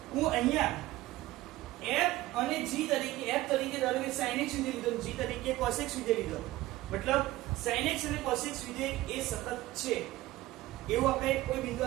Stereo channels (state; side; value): quieter; left; 17.2 dB